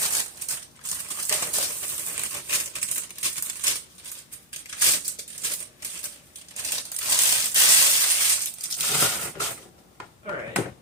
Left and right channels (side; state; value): both; normal; correlation 0.00